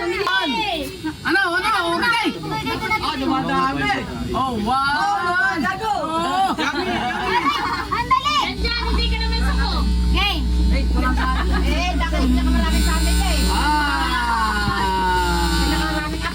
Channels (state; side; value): identical; both; correlation 1.00